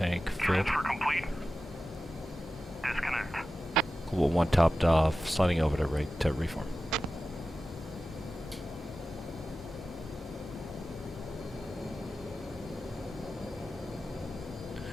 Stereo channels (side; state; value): both; normal; correlation 0.94